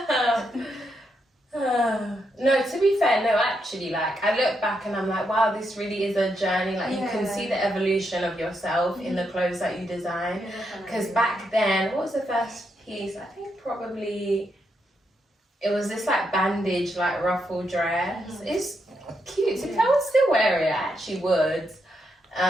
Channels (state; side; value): normal; both; correlation 0.81